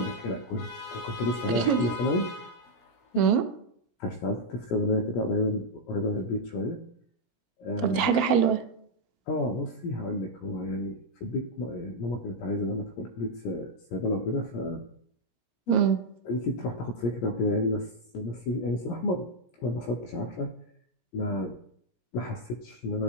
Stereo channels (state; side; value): late; right; 17 ms